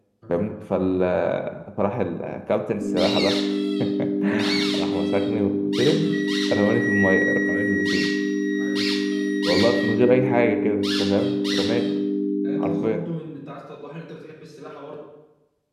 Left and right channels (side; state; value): both; identical; correlation 1.00